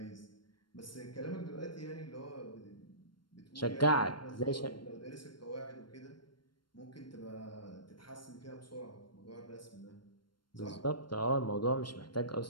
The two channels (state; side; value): late; right; 0.72 ms